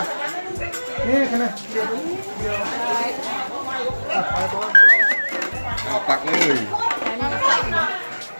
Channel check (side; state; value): both; inverted; correlation -1.00